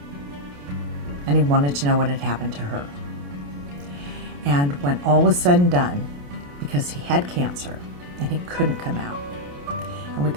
and he wanted to know what had happened to her. And when all was said and done, because he had cancer and he couldn't come out, and we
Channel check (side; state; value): left; late; 28 ms